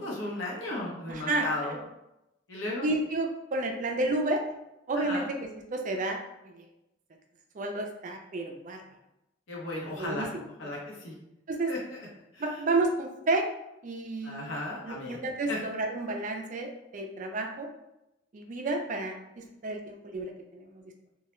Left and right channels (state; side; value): normal; both; correlation 0.16